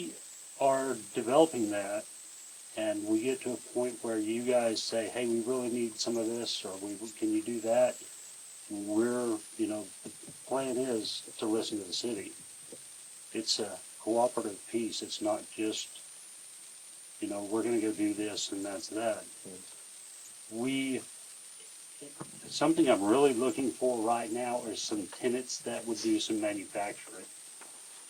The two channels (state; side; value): identical; both; correlation 1.00